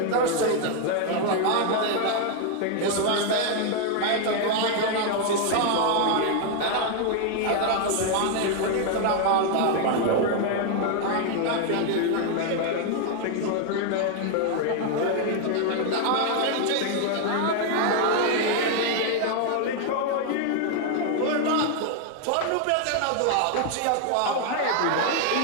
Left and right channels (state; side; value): different; both; correlation 0.00